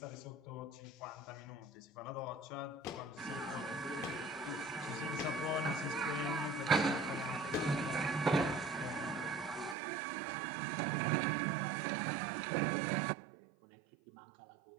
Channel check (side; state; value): left; drops out; at 9.8 s